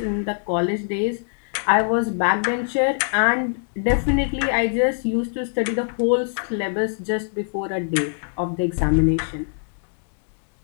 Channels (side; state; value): right; silent; digital silence